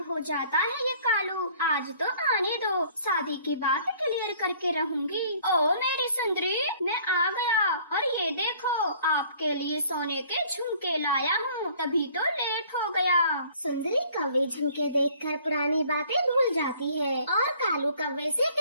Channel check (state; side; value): inverted; both; correlation -0.56